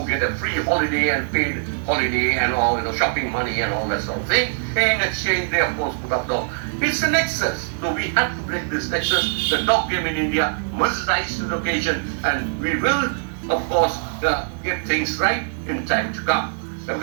get a free holiday and paid holiday and all shopping money and all that sort of thing. In exchange, they of course put up dog. It's a nexus, so we have to break this nexus. The dog game in India must rise to the occasion, and we will of course get things right in time to come,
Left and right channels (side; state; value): left; silent; digital silence